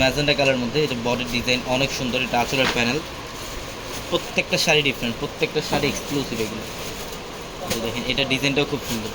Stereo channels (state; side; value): identical; both; correlation 1.00